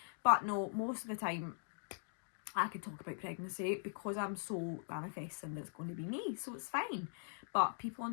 But no, most of the time I can talk about pregnancy because I'm so manifesting that it's going to be me, so it's fine. But people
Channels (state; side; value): silent; right; digital silence